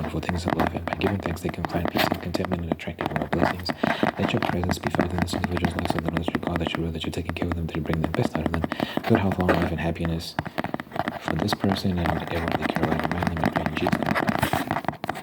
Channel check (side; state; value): both; identical; correlation 1.00